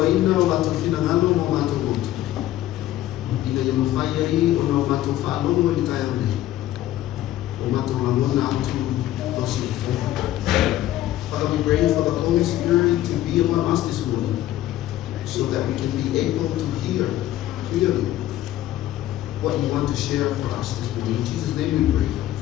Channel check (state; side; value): quieter; right; 13.7 dB